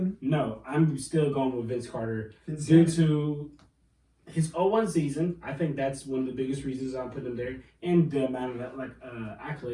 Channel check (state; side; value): identical; both; correlation 1.00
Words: No, I'm still going with Vince Carter due to his 0-1 season. I think that's one of the biggest reasons I'm putting him there, and the amount of